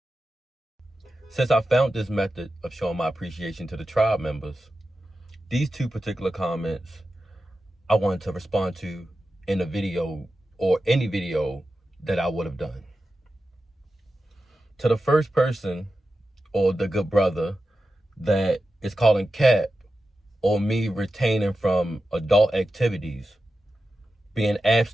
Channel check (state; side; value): normal; both; correlation 0.92